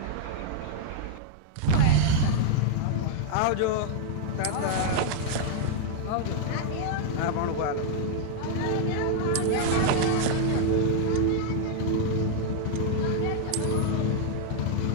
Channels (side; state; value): both; different; correlation -0.01